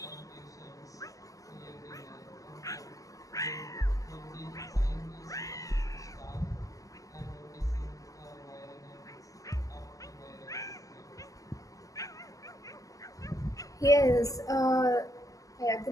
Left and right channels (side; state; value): right; late; 0.17 ms